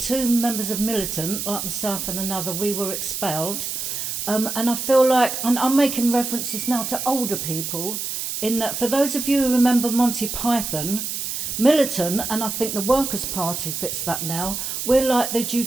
members of Militant, like myself and another, we were expelled. And I feel like, and I'm making references now to older people, in that for those of you who remember Monty Python, Militant, and I think the Workers' Party fits that now, we're like the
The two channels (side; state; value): right; noise; hiss, 4 dB below the sound